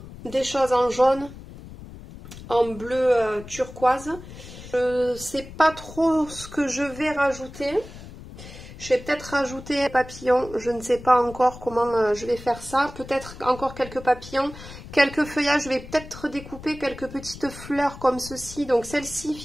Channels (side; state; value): left; noise; rumble, 15 dB below the sound